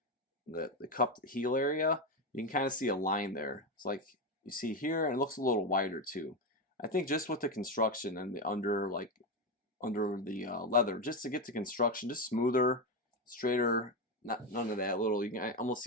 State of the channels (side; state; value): both; normal; correlation 0.12